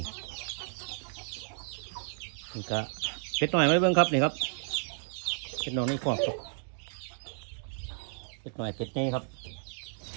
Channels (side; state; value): left; silent; digital silence